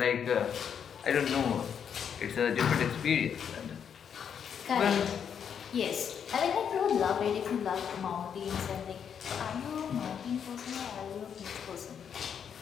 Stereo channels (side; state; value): right; quieter; 7.8 dB